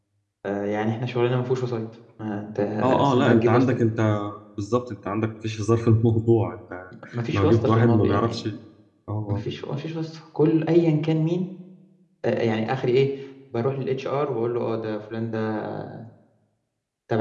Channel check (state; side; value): identical; both; correlation 1.00